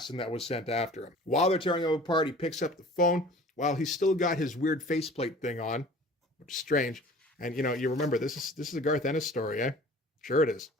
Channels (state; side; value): normal; both; correlation 0.46